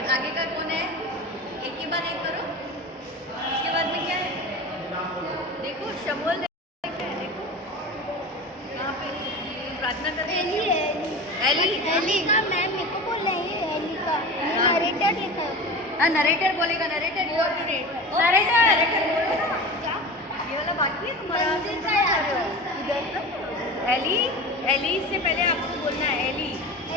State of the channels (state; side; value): normal; both; correlation 0.31